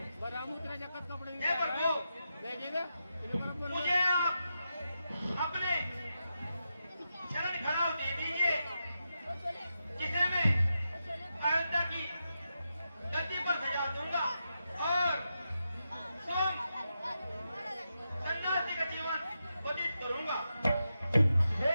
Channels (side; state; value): both; inverted; correlation -0.87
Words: हे प्रभु, मुझे आप अपने शरण खड़ाव दे दीजिए, जिसे मैं अयोध्या की धरती पर सजा दूंगा और सन्यासी का जीवन व्यतीत करूंगा। हे